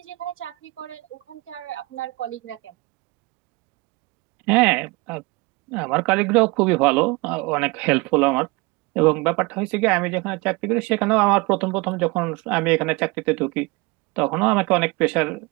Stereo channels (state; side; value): quieter; left; 24.3 dB